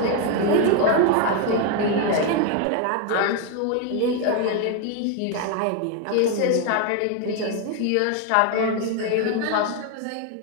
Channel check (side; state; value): both; different; correlation 0.01